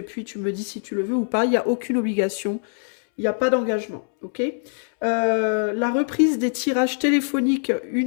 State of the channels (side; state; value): right; silent; 63 dB below the other